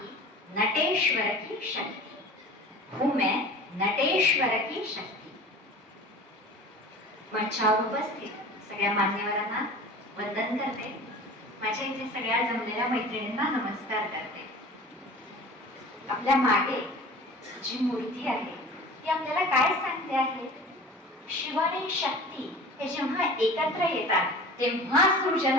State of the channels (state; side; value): normal; both; correlation 0.40